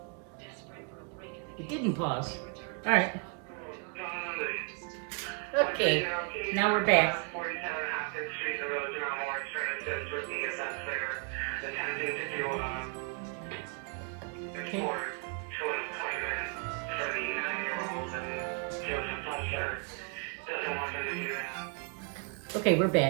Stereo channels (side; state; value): left; quieter; 37.3 dB